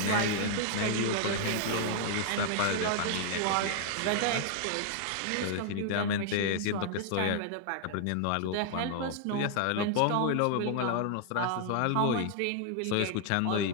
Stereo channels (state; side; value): different; both; correlation 0.00